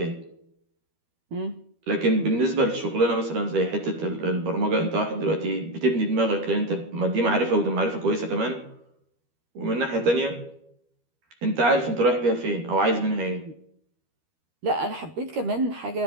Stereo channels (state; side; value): late; left; 13 ms